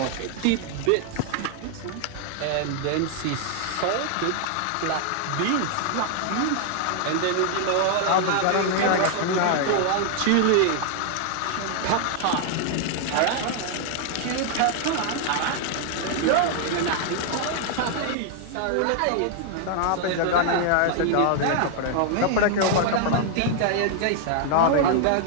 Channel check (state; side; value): different; both; correlation 0.00